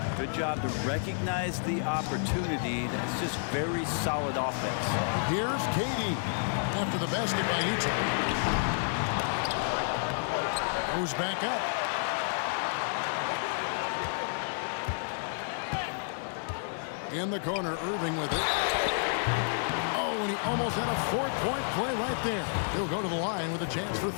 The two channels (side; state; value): right; silent; 57 dB below the other